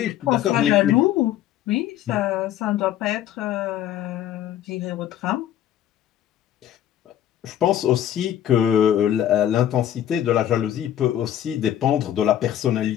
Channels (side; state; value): right; quieter; 11.3 dB